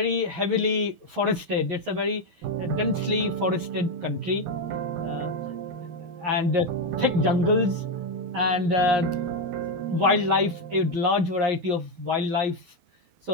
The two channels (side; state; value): left; late; 11 ms